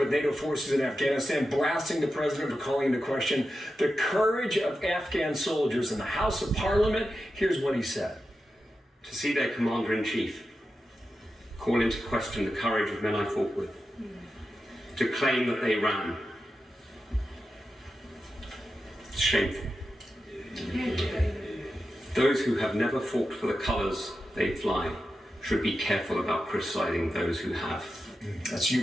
with NATO forces in Afghanistan, blasting the president for calling into question the courage of Afghan soldiers in the House of Parliament. Here's what he said. To see their commander-in-chief call into question the courage of men I fought with, to claim that they ran. It's shameful. Those who have never fought for the colours they fly should be careful about criticising those who have. That's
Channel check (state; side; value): normal; both; correlation 0.90